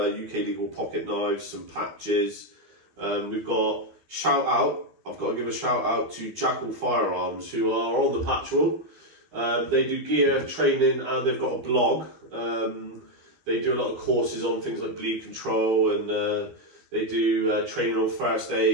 legal pocket knives, some patches. We've got shout out. I've got to give a shout out to Jackal Firearms, who are on the patch wall. They do gear training and they've got a blog. They do a lot of courses on things like bleed control, and they do training on first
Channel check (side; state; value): left; late; 12 ms